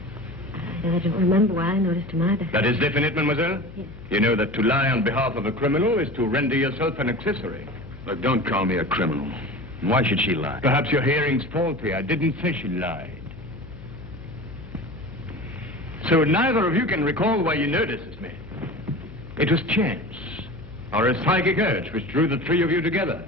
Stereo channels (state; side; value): noise; left; hum, 17 dB below the sound